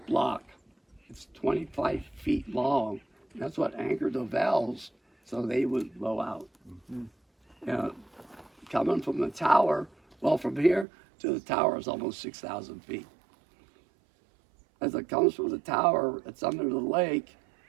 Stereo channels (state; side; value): drops out; left; at 10.9 s